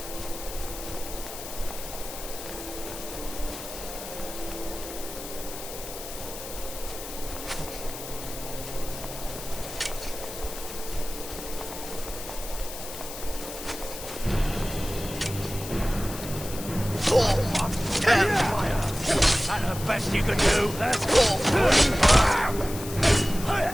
Best you can do. That's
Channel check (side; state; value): left; noise; hiss, 10 dB below the sound